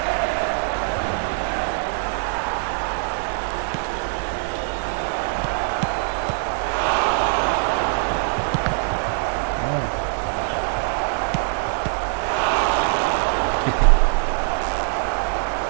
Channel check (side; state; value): left; silent; digital silence